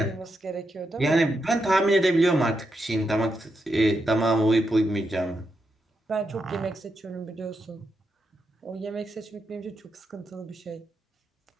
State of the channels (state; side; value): normal; both; correlation 0.84